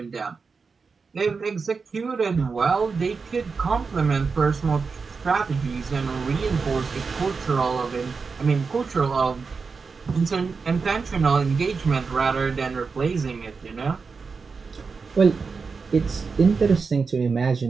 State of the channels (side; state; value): left; quieter; 4.9 dB